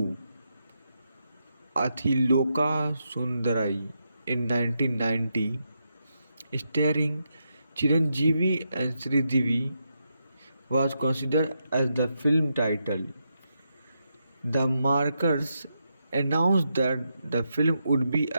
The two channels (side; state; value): both; inverted; correlation -0.84